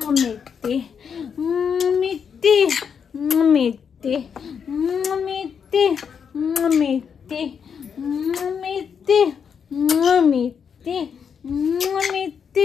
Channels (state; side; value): quieter; right; 6.9 dB